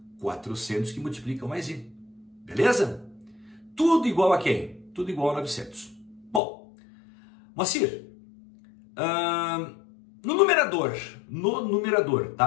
400 que multiplica 1 mais i. Beleza? Tudo igual a quem? Tudo igual a 900. Bom, Moacir, no numerador,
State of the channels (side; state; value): right; drops out; at 6.4 s